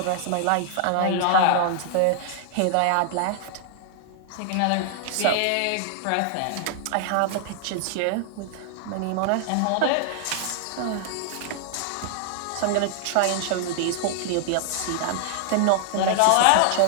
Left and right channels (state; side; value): different; both; correlation 0.00